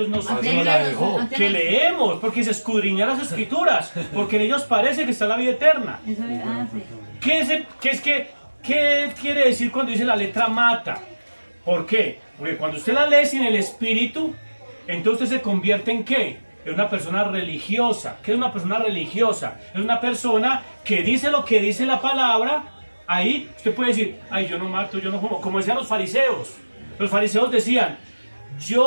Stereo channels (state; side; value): inverted; both; correlation -1.00